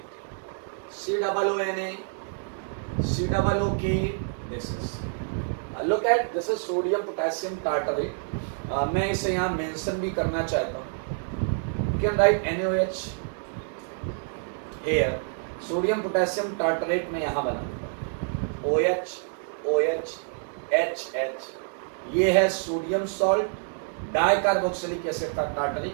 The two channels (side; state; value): left; silent; digital silence